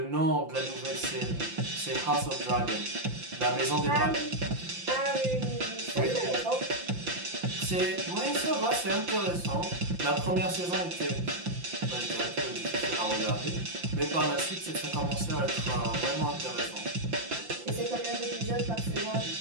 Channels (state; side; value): late; left; 5.8 ms